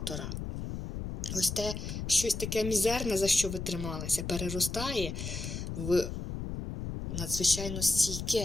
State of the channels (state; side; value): noise; left; rumble, 5 dB below the sound